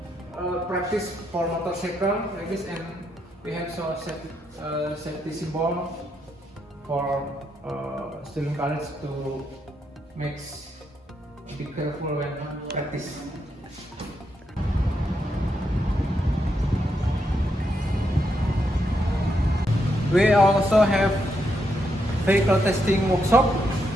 practice for motorcycle like this, and we have so safety symbol for student college to be careful when practice. We also have vehicle testing workshop.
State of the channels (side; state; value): both; normal; correlation 0.80